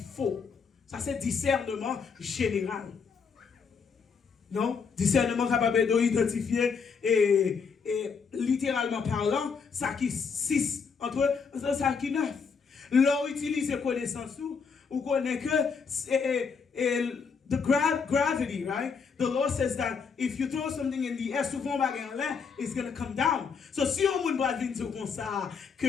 faux. Ça c'est discernement général. Non, discernement capable d'identifier et littéralement parlant, ça qui 6 entre ça qui 9. L'on utilise connaissance ou connaît que the gravity, right? The Lord says that if you throw something in the air, souvent bagay en l'air, it's going to come down. So si on moun va venir dire comme ça,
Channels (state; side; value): quieter; right; 5.7 dB